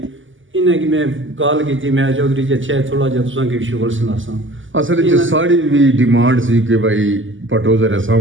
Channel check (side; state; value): left; late; 0.57 ms